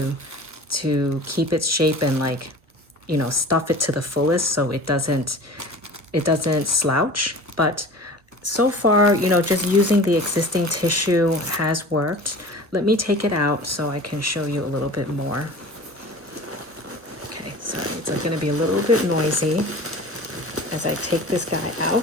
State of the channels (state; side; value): late; left; 1.1 ms